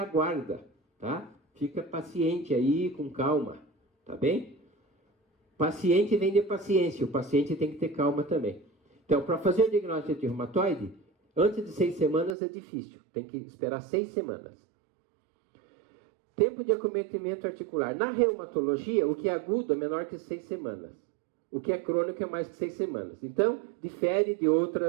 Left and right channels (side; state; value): left; drops out; at 12.4 s